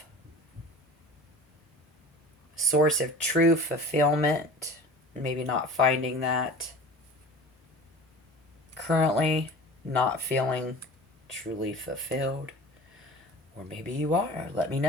Source of true fulfillment. Maybe not finding that. Currently not feeling truly fulfilled. Or maybe you are. Let me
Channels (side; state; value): both; normal; correlation 0.40